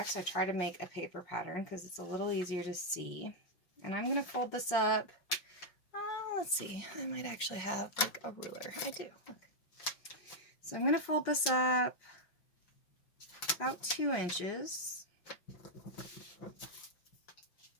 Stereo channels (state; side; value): late; right; 5.6 ms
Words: I try to make a paper pattern because it's a little easier to see. And I'm going to fold this up. Let's see, I might actually have like a ruler. I do. Okay. So I'm going to fold this up about 2 inches,